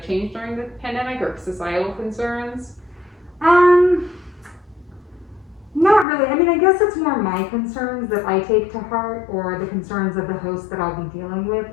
changed during the pandemic or societal concerns? Not really. I mean, I guess it's more my concerns that I take to heart, or the concerns of the host that I'll be dealing with.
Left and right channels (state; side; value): drops out; right; at 6.1 s